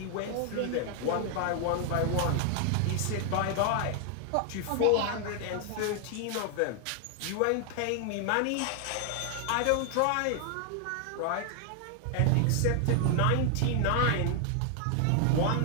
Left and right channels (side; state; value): both; different; correlation 0.00